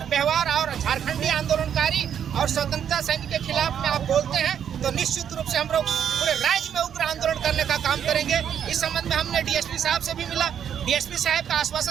व्यवहार और झारखंडी आंदोलनकारी और स्वतंत्रता सैनिक के खिलाफ में आप बोलते हैं तो निश्चित रूप से हम लोग पूरे राज्य में उग्र आंदोलन करने का काम करेंगे। इस संबंध में हमने डीएसपी साहब से भी मिला। डीएसपी साहब का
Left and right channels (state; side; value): quieter; left; 8.8 dB